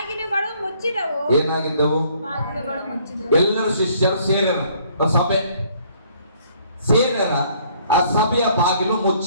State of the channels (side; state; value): both; inverted; correlation -0.62